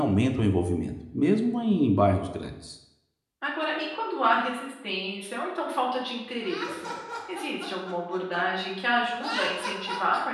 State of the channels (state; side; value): identical; both; correlation 1.00